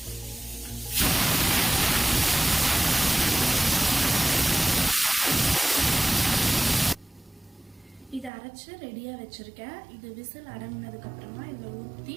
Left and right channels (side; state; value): left; drops out; at 8.3 s